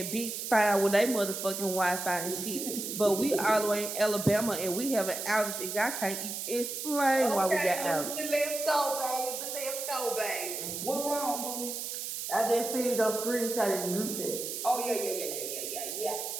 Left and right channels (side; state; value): right; noise; hiss, 5 dB below the sound